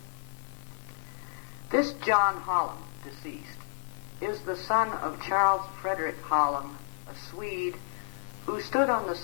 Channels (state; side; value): silent; right; digital silence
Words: This John Holland, deceased, is the son of Charles Frederick Holland, a Swede, who stood on the